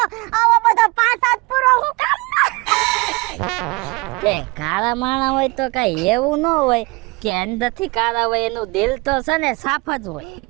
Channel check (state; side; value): quieter; left; 25.3 dB